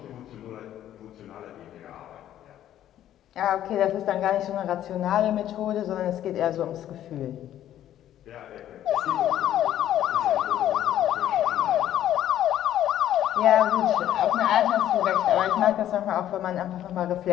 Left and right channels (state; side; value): quieter; right; 11.8 dB